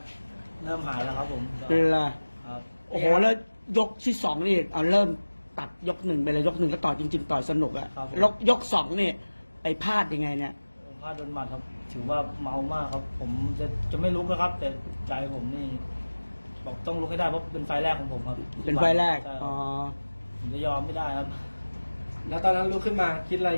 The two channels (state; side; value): inverted; both; correlation -1.00